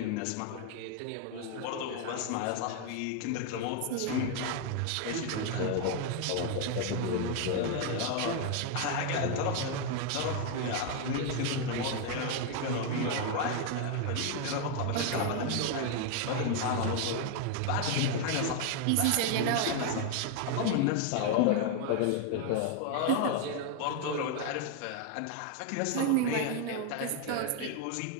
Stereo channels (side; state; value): both; different; correlation 0.01